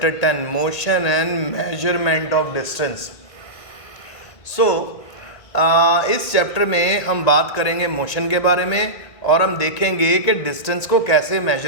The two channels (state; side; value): late; right; 1.8 ms